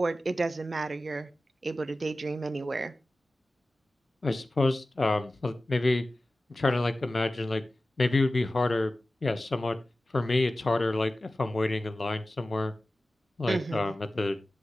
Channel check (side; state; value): both; normal; correlation 0.95